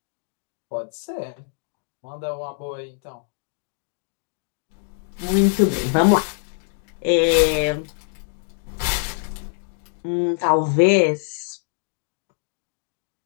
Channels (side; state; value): right; silent; digital silence